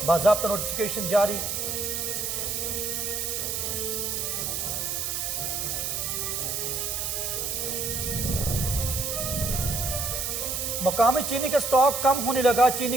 बाज़ाब्ता नोटिफिकेशन जारी। मुकामी चीनी का स्टॉक कम होने लगा।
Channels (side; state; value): right; noise; hiss, 2 dB below the sound